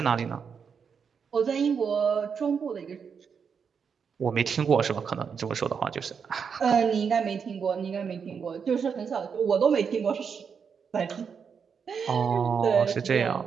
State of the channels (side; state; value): left; quieter; 6.5 dB